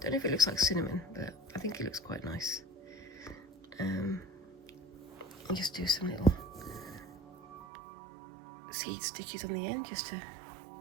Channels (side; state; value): left; drops out; at 7.7 s